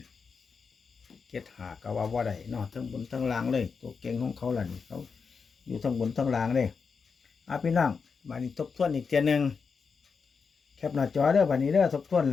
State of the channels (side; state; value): right; quieter; 5.4 dB